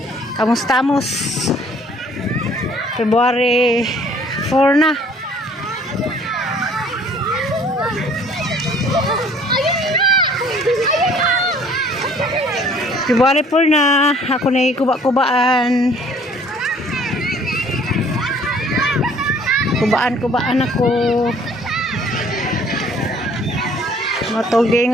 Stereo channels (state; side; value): normal; both; correlation 0.56